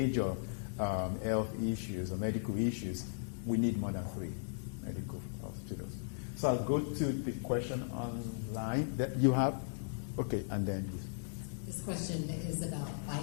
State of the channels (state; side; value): silent; right; digital silence